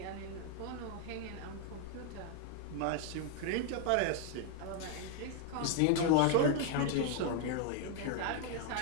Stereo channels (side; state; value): both; different; correlation 0.00